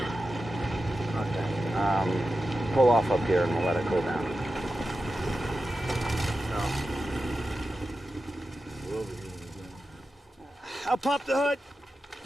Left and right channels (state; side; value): normal; both; correlation 0.92